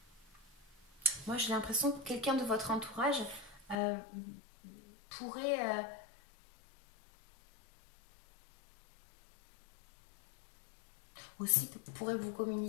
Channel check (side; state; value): right; drops out; at 3.8 s